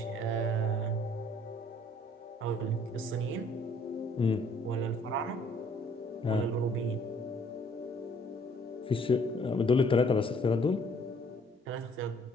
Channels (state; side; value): normal; both; correlation 0.60